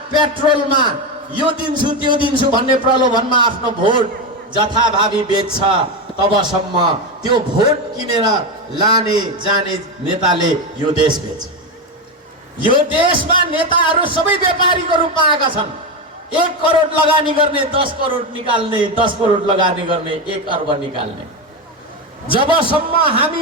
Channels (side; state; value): both; normal; correlation 0.13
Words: पेट्रोलमा यो दिन्छु त्यो दिन्छु भन्ने प्रलोभनमा आफ्नो भोट जथाभावी बेच्छ, तबसम्म त्यो भोट किनेर लाने जाने नेताले यो देश बेच्छ। यो देशमा नेताहरू सबै व्यापारीको रूपमा आएका छन्। 1 करोड लगानी गर्ने 10 करोड निकाल्ने, 10 करोड लगानी गर्ने 1 अर्ब निकाल्ने। जबसम्म